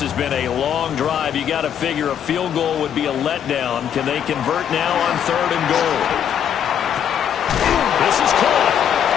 has been a long drive. You got to figure a field goal would be a letdown. Can they convert now on 3rd and goal? This is caught.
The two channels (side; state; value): right; quieter; 9.0 dB